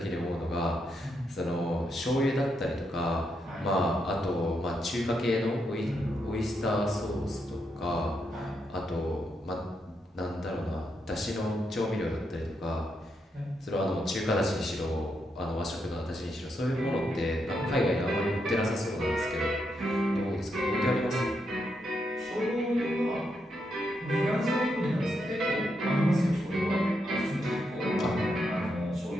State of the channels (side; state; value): both; normal; correlation 0.81